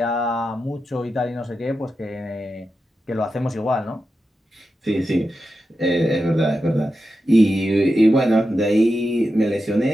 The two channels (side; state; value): both; normal; correlation 0.90